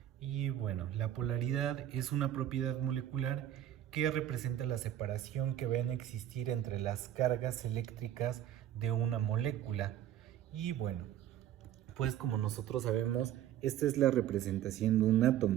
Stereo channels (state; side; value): quieter; left; 11.8 dB